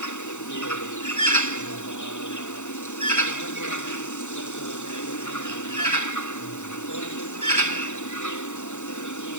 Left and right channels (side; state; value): right; late; 0.84 ms